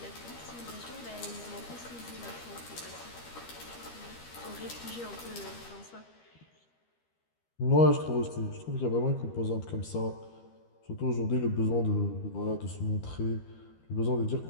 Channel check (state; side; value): late; right; 13 ms